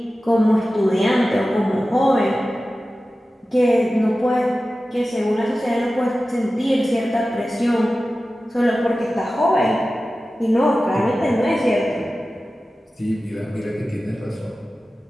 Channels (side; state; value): both; normal; correlation 0.95